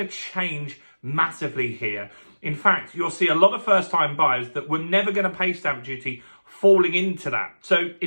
to change massively here. In fact, you'll see a lot of first-time buyers that were never going to pay stamp duty falling into that. So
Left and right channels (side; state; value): both; inverted; correlation -1.00